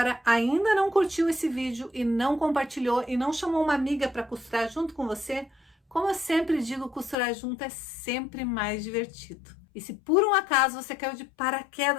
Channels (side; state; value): right; drops out; at 7.2 s